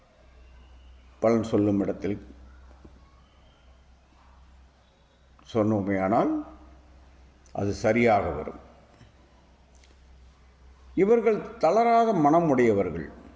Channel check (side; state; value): both; identical; correlation 1.00